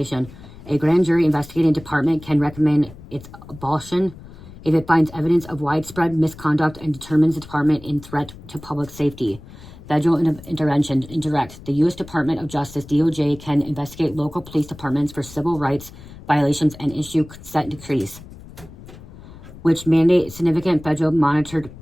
A grand jury investigating department can recommend its abolition if it finds evidence of widespread misconduct and determines the department in threat to public safety. Federal intervention, indirect. The U.S. Department of Justice, DOJ, can investigate local police departments for civil rights violations and issue consent decrees, which mandate significant federal monitored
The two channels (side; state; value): left; noise; rumble, 18 dB below the sound